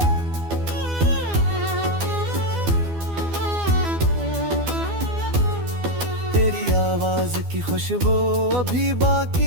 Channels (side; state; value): left; late; 12 ms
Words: आवाज की खुशबू अभी